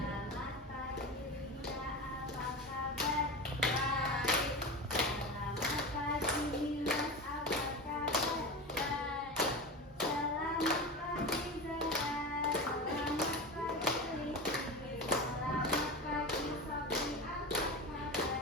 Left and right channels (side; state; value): both; normal; correlation 0.26